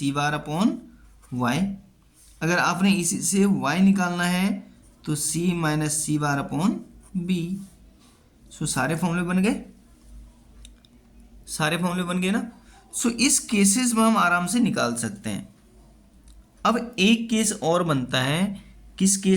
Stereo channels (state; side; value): identical; both; correlation 1.00